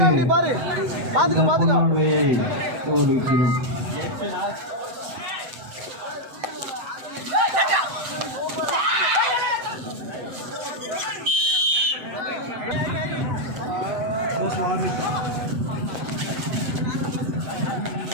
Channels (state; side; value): late; left; 7.8 ms